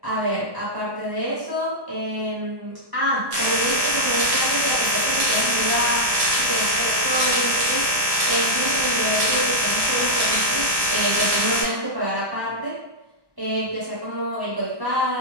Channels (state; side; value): late; left; 1.1 ms